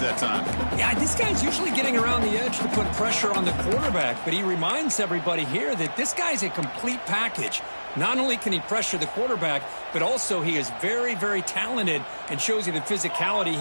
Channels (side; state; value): both; inverted; correlation -1.00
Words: time. Yeah, this guy's usually getting around the edge to put pressure on the quarterback, but he reminds everybody here that this guy's a complete package. Not only can he pressure the quarterback, but also he is very, very talented and shows you the physicality